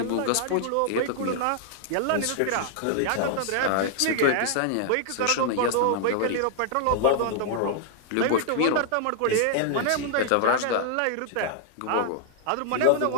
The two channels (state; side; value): different; both; correlation 0.00